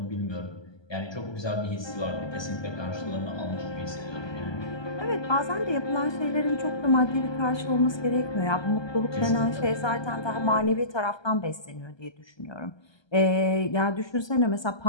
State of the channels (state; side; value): late; right; 1.2 ms